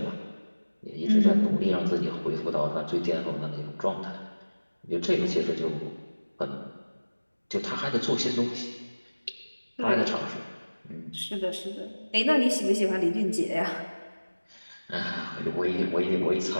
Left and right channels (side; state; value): both; inverted; correlation -1.00